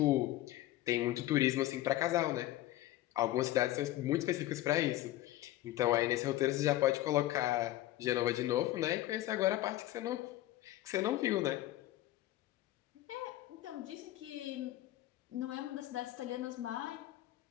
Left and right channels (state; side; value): quieter; right; 15.2 dB